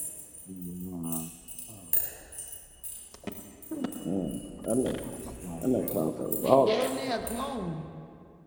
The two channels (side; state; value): both; identical; correlation 1.00